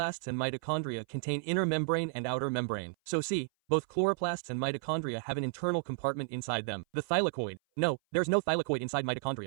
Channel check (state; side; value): silent; left; 56 dB below the other